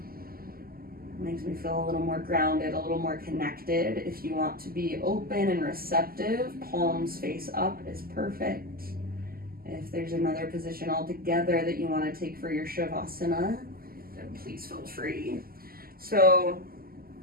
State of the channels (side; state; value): left; late; 0.43 ms